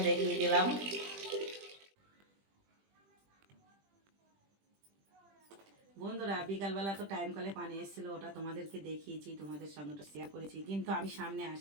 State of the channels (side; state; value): left; late; 20 ms